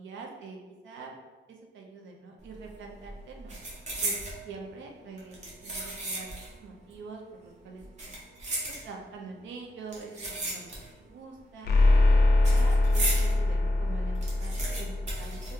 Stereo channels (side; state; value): both; normal; correlation 0.87